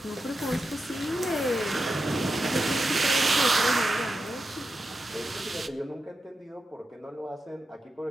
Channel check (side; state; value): both; normal; correlation 0.89